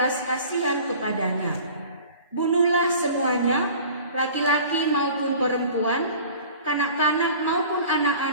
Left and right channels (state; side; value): inverted; both; correlation -0.44